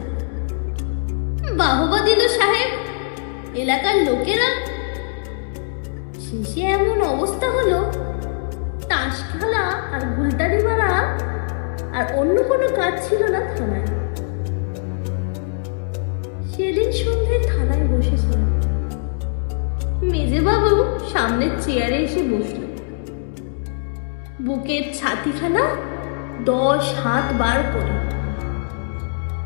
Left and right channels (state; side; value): silent; right; digital silence